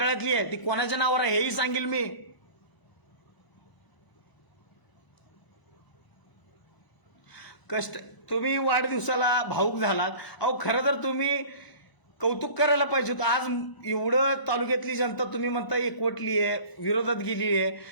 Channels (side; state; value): right; late; 1.0 ms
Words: आहे. ती कोणाच्या नावावर आहे हेही सांगेल मी. कष्ट तुम्ही वाढदिवसाला भाऊक झालात. अहो, खरं तर तुम्ही कौतुक करायला पाहिजे होतं. आज एवढं तालुक्यातली जनता तुम्ही म्हणता एकवटली आहे, विरोधात गेली आहे,